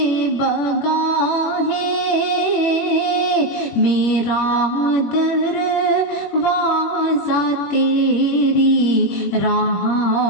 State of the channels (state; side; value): late; right; 21 ms